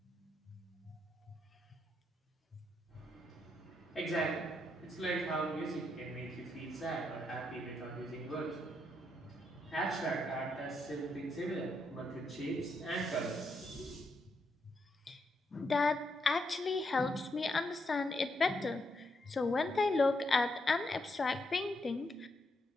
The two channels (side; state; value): both; normal; correlation 0.79